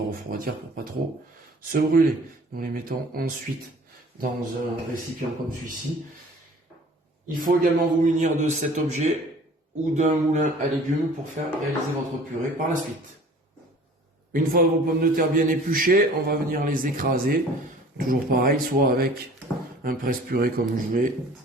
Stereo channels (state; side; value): normal; both; correlation 0.48